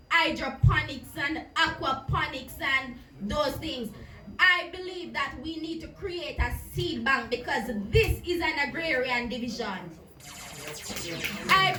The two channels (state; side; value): identical; both; correlation 1.00